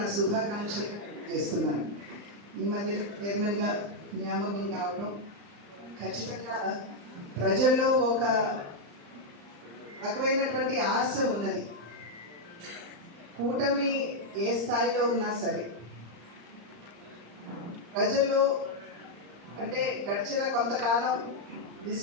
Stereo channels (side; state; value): left; late; 35 ms